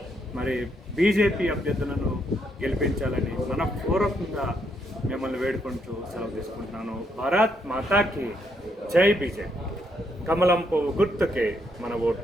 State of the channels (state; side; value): normal; both; correlation 0.75